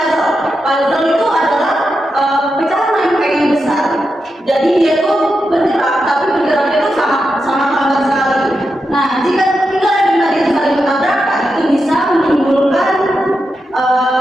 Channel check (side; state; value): both; normal; correlation 0.87